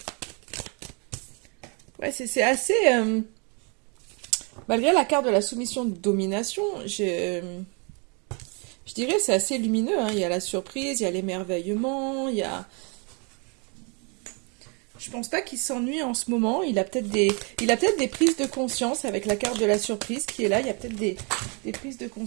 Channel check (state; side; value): quieter; left; 34.2 dB